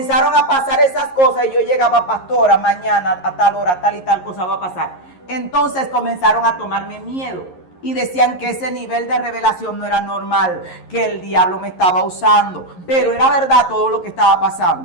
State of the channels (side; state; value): right; late; 11 ms